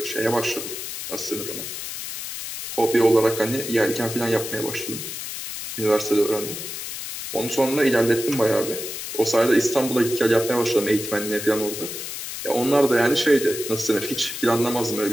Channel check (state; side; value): noise; left; hiss, 7 dB below the sound